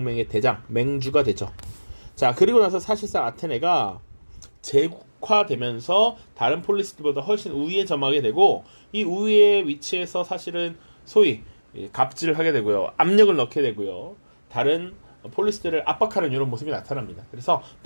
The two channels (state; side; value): inverted; both; correlation -1.00